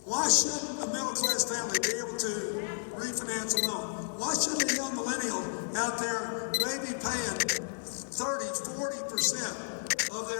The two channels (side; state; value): right; silent; digital silence